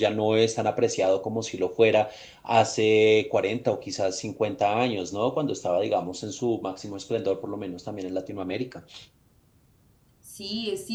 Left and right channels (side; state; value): both; identical; correlation 1.00